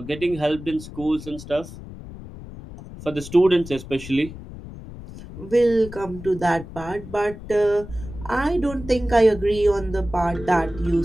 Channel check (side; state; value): left; noise; rumble, 14 dB below the sound